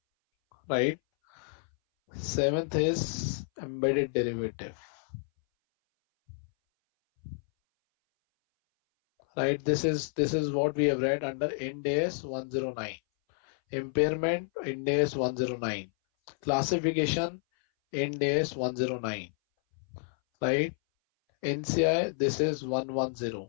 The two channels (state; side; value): silent; right; 58 dB below the other